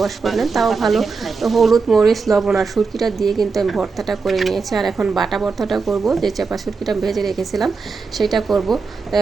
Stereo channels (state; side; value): quieter; left; 4.6 dB